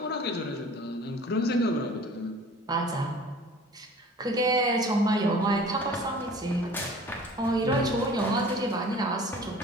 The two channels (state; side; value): normal; both; correlation 0.46